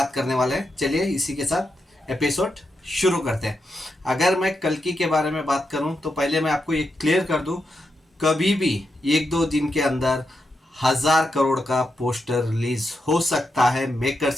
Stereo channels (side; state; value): both; normal; correlation 0.85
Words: करने वाले हैं। चलिए इसी के साथ एपिसोड शुरू करते हैं। अगर मैं कल्कि के बारे में बात करूं तो पहले मैं आपको ये क्लियर कर दूं, कभी भी 1-2 दिन के अंदर 1000 करोड़ का पोस्टर रिलीज हो सकता है